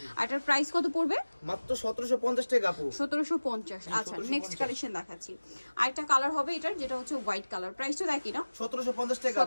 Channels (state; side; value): inverted; both; correlation -1.00